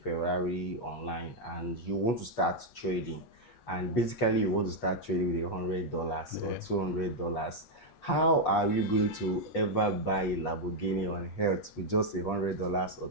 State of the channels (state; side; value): late; right; 8.3 ms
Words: online, and you want to start trading, and basically you want to start trading with $100 or Yeah. $200. How are you going to ever buy a Lamborghini on earth with just $100 or